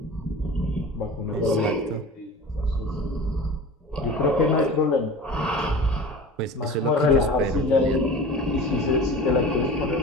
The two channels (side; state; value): both; normal; correlation 0.36